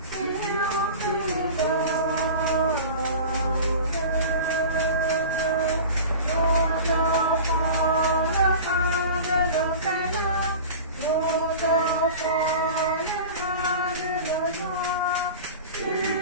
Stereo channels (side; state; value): both; inverted; correlation -0.35